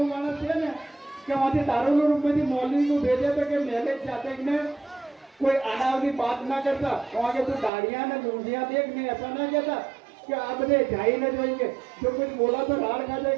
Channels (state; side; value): drops out; left; at 7.7 s